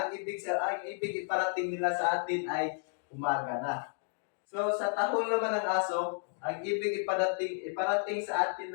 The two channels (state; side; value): silent; right; digital silence